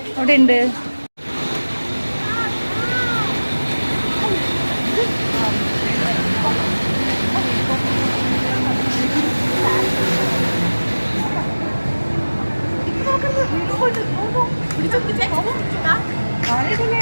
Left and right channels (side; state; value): both; inverted; correlation -1.00